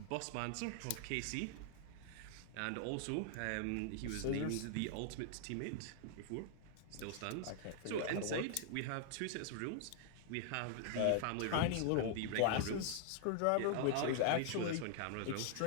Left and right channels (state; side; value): different; both; correlation 0.00